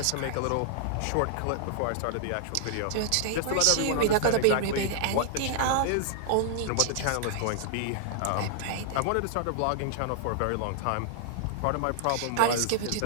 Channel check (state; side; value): different; both; correlation -0.01